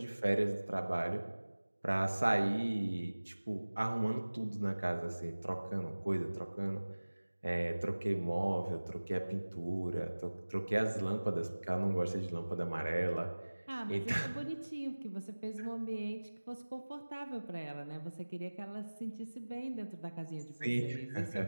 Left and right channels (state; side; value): inverted; both; correlation -1.00